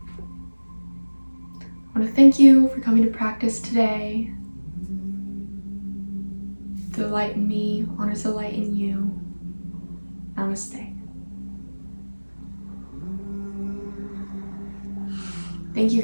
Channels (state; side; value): inverted; both; correlation -1.00